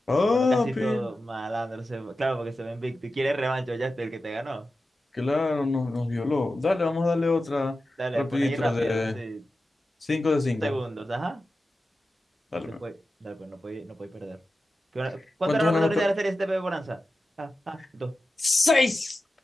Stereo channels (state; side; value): normal; both; correlation 0.93